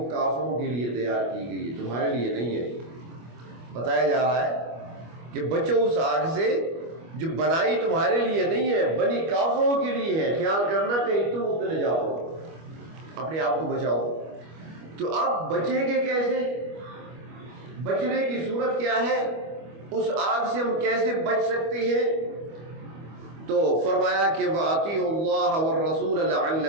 کافروں کے لیے تیار کی گئی ہے، تمہارے لیے نہیں ہے۔ بتایا جا رہا ہے کہ بچو اس آگ سے جو بنائی تمہارے لیے نہیں ہے، بنی کافروں کے لیے ہے۔ خیال کرنا کہیں تم اس میں نہ جاؤ، اپنے آپ کو بچاؤ۔ تو آپ بچیں گے کیسے؟ بچنے کی صورت کیا ہے؟ اس آگ سے ہم کیسے بچ سکتے ہیں؟ تو فرمایا کہ وَأَطِيعُوا اللَّهَ وَالرَّسُولَ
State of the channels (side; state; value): left; late; 25 ms